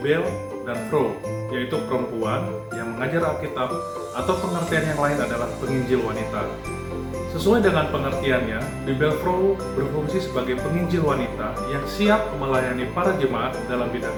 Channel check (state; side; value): identical; both; correlation 1.00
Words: dan Pro, yaitu perempuan yang mengajar Alkitab, atau pengertian yang lain adalah penginjil wanita. Sesuai dengan pengertiannya, Bibel Pro berfungsi sebagai penginjil wanita yang siap melayani para jemaat dalam bidang